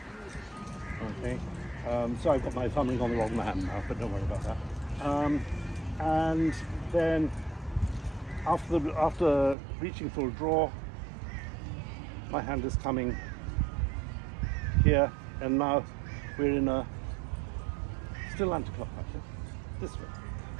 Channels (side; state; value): left; drops out; at 9.6 s